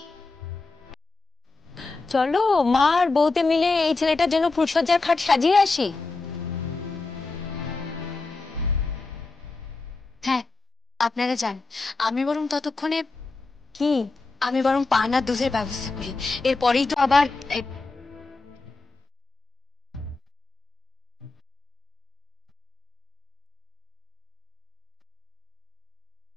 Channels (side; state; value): right; quieter; 3.7 dB